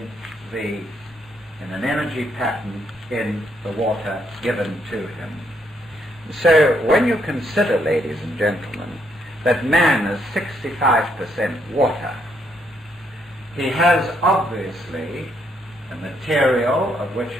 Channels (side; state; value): both; normal; correlation 0.74